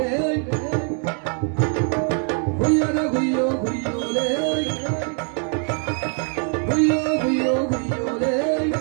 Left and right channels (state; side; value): quieter; left; 39.8 dB